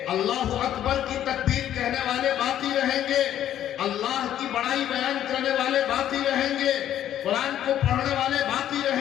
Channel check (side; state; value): right; quieter; 11.2 dB